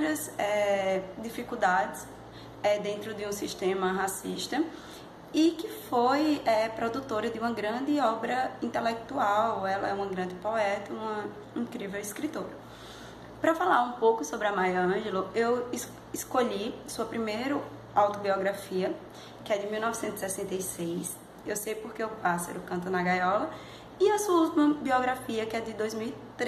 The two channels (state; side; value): identical; both; correlation 1.00